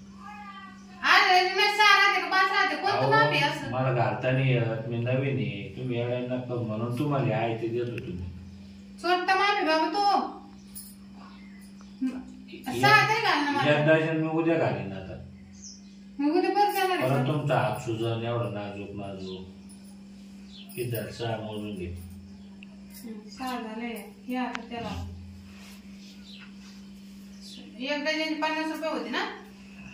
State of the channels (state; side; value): identical; both; correlation 1.00